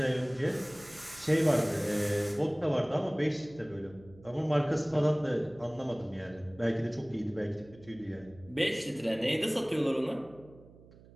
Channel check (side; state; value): right; noise; hum, 23 dB below the sound